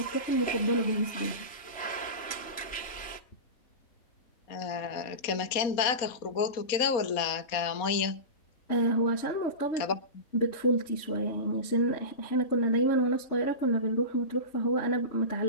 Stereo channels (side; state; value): right; late; 4.2 ms